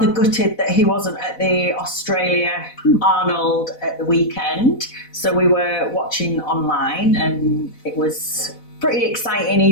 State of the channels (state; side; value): late; right; 4.0 ms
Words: gutted that he wasn't at the Australia Arnold at the weekend. So we were watching online and it was pretty exciting